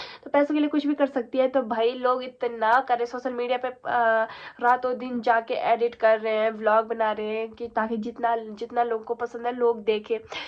तो पैसों के लिए कुछ भी कर सकती है। तो भाई लोग इतना करे सोशल मीडिया पे रातों दिन जाके एडिट कर रहे हैं, व्लॉग बना रहे हैं कि ताकि जितना जितना लोगों को पसंद है लोग देखे,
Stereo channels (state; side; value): identical; both; correlation 1.00